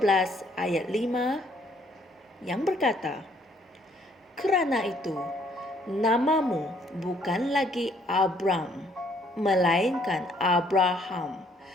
ayat 5 yang berkata, "Kerana itu, namamu bukan lagi Abram, melainkan Abraham,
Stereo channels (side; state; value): both; normal; correlation 0.65